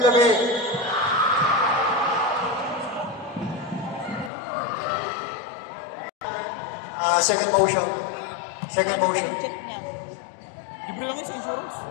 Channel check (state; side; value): drops out; right; at 4.3 s